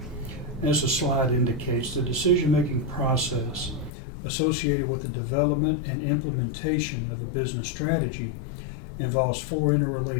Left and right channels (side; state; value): right; drops out; at 3.9 s